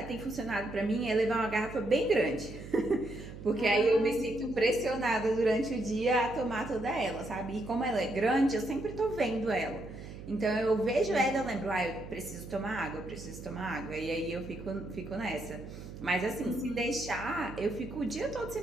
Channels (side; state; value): right; noise; hum, 12 dB below the sound